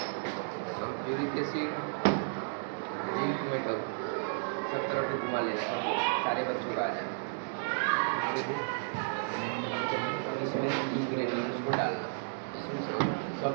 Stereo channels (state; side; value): silent; left; digital silence